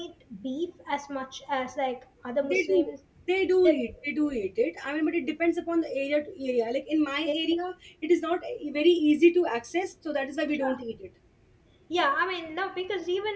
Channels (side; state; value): both; identical; correlation 1.00